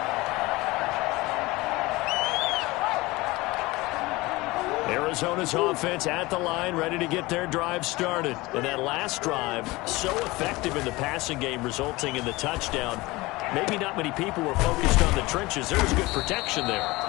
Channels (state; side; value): quieter; right; 21.4 dB